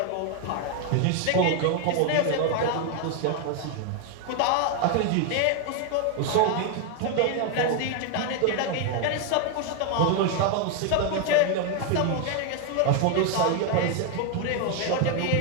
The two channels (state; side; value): different; both; correlation 0.01